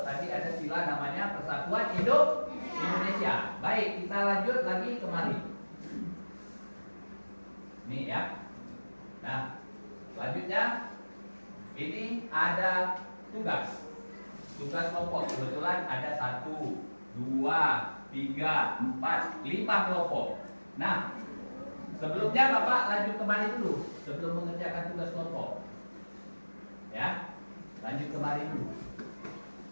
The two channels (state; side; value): inverted; both; correlation -1.00